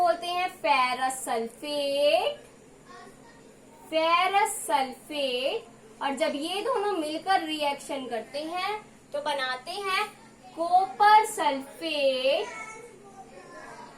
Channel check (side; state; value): both; identical; correlation 1.00